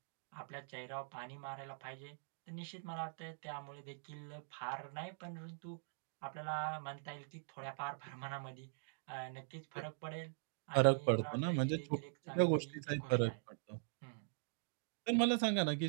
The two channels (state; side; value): silent; left; digital silence